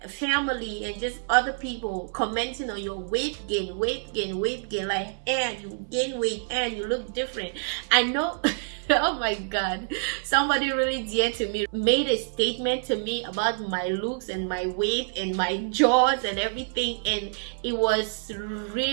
family and just other people commenting on your weight gain, like, and you gain weight and you look different, I know. Oh my God, somebody really dear to me made a statement to me about my looks and my weight and my jaws and everything, and it was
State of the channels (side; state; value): left; silent; 60 dB below the other